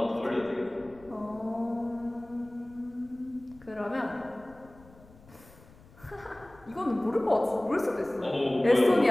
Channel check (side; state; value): left; noise; rumble, 24 dB below the sound